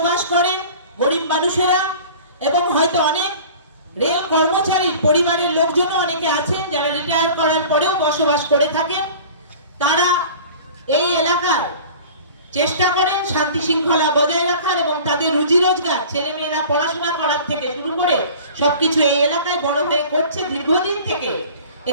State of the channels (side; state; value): both; inverted; correlation -0.42